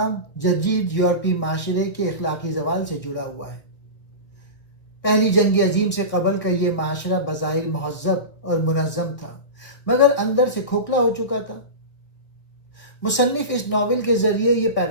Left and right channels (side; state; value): right; late; 2.1 ms